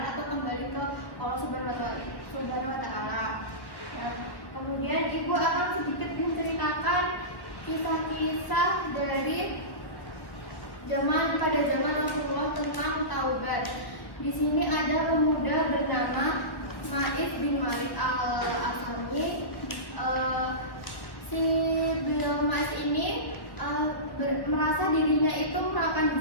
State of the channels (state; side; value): late; right; 1.3 ms